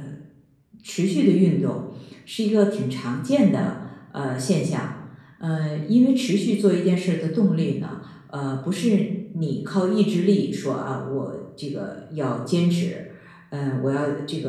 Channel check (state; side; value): identical; both; correlation 1.00